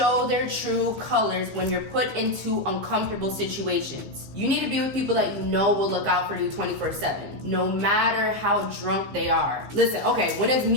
their true colors when you're put into uncomfortable situations. You need to be with people that you know will look out for you 24/7, no matter how drunk they are. Listen, okay, when it's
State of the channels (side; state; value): left; late; 15 ms